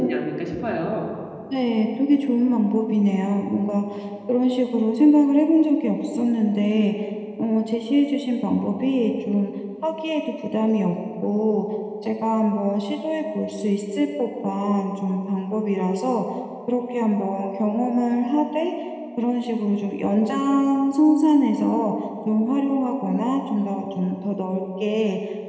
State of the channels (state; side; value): identical; both; correlation 1.00